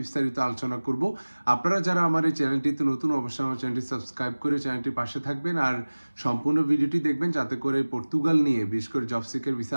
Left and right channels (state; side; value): inverted; both; correlation -1.00